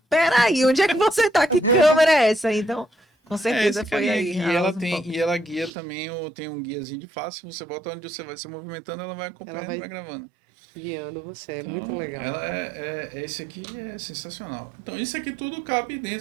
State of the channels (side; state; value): left; drops out; at 5.7 s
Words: peraí, onde é que você tá? Que câmera é essa? Então, com certeza esse foi carinha aí. aqui. a Ela Osmo Pocket. e ela guia também, tem um guiazinho de face. Você bota onde você vai se movimentando, ela vai acompanhando e vai gravando. Guiando você. Então, muito legal. esse aqui é sensacional. Então, isso aqui tudo cabe